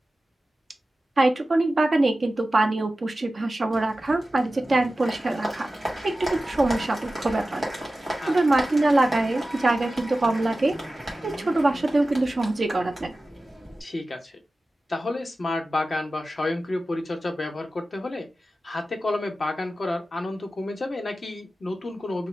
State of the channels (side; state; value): both; normal; correlation 0.95